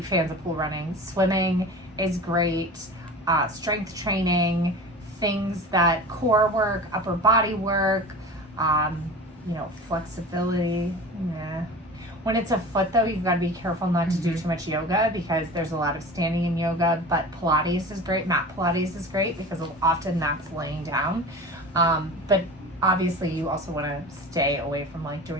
fans of pool running. Swimming is great. Strength training, things that core work, upper body work, flexibility. Yeah. When it's a foot though, you've got to be careful not to do too much yoga because there's a lot of standing in yoga, but Pilates is great. Mat Pilates is great because often that's laying down. But obviously you also want to stay away from like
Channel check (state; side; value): normal; both; correlation 0.35